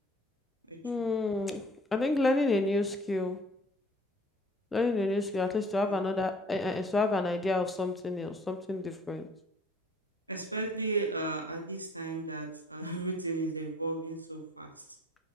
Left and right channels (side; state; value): both; normal; correlation 0.54